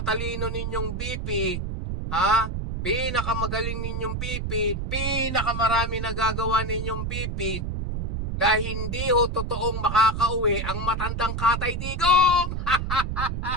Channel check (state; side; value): noise; right; rumble, 3 dB below the sound